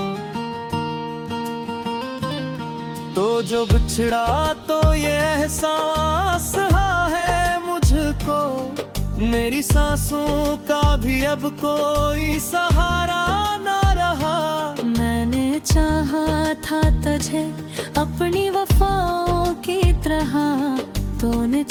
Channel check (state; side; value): identical; both; correlation 1.00